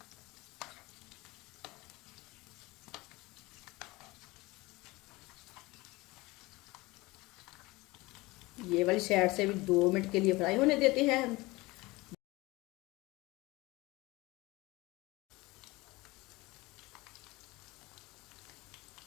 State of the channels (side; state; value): right; quieter; 21.7 dB